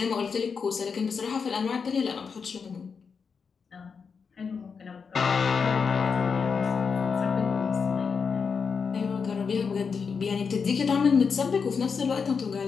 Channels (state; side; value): quieter; right; 5.7 dB